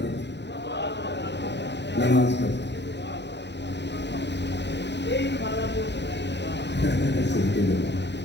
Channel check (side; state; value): right; late; 0.50 ms